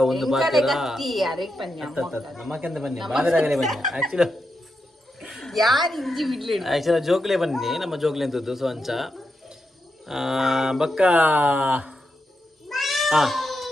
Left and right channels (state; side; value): normal; both; correlation 0.86